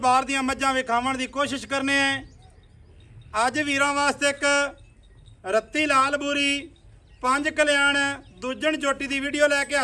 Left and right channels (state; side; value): identical; both; correlation 1.00